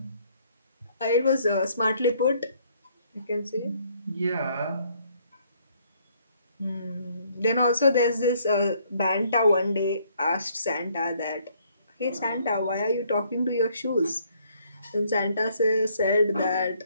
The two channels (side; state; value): both; inverted; correlation -0.66